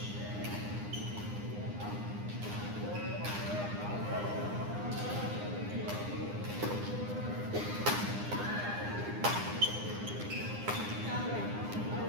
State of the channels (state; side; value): late; left; 9.8 ms